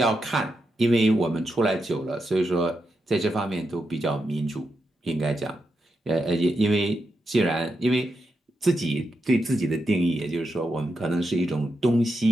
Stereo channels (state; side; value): normal; both; correlation 0.86